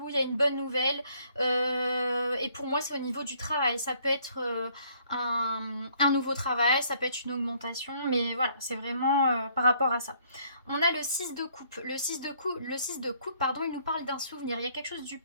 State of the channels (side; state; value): both; inverted; correlation -0.64